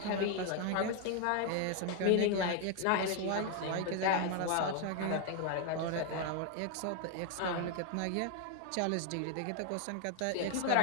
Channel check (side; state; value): both; different; correlation 0.01